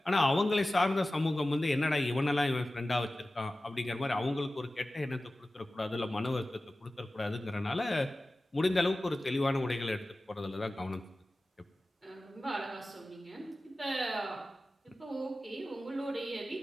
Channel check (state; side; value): normal; both; correlation 0.96